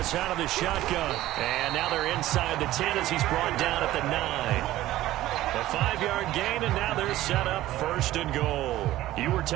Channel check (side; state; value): left; quieter; 15.2 dB